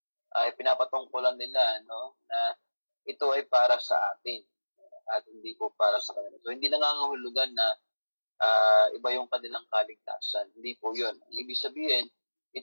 ay pinapatungkulan nila, na ito ay para sa atin at hindi po para sa kanila. So, hindi nangangahulugan na iba yung kanilang kaligtasan. Hindi po yun. Ibig sabihin,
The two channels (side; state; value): both; inverted; correlation -1.00